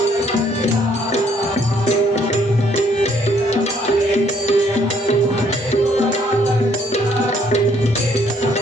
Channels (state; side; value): normal; both; correlation 0.66